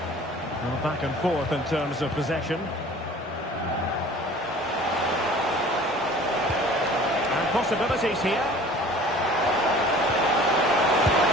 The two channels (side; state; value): both; normal; correlation 0.47